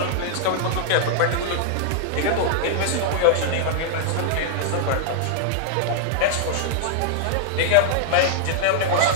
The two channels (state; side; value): different; both; correlation -0.01